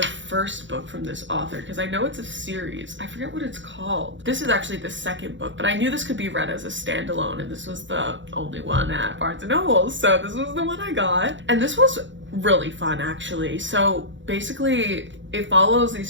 first book from this author because I know it's a series. I forget what it's called. This is actually the second book, but I knew this could be read as a standalone, and this was the only one at Barnes & Noble, so this was the one I got. And this was really fun, actually. So basically, it follows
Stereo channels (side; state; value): left; late; 0.54 ms